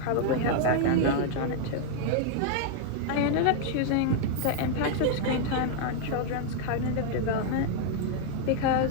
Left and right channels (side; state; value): both; different; correlation 0.00